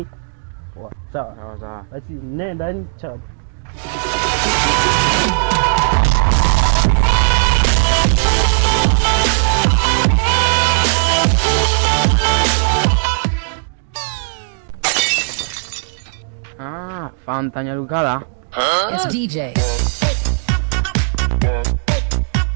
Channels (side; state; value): left; silent; digital silence